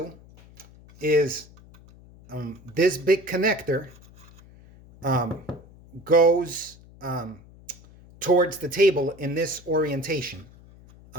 is this big connector goes towards the table in this orientation,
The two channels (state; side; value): noise; left; hum, 23 dB below the sound